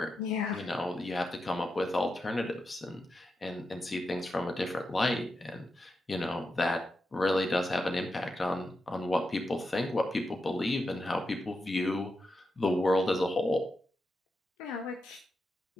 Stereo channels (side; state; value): both; normal; correlation 0.87